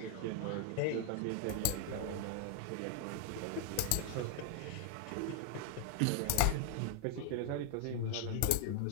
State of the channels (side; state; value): both; different; correlation 0.00